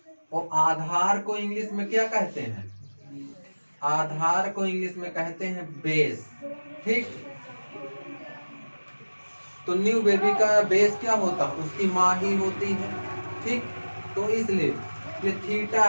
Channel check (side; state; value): both; inverted; correlation -1.00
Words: और आधार को इंग्लिश में क्या कहते हैं, आधार को इंग्लिश में कहते हैं बेस, ठीक। तो न्यू बेबी का बेस क्या होता है, उसकी माँ ही होती है, ठीक। तो इसलिए ये थीटा